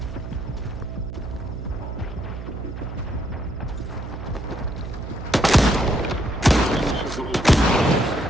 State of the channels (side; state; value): right; noise; hum, 8 dB below the sound